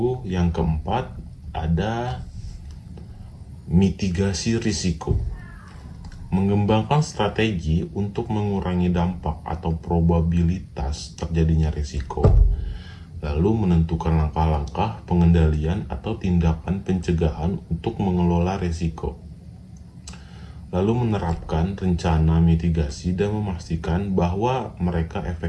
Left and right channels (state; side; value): identical; both; correlation 1.00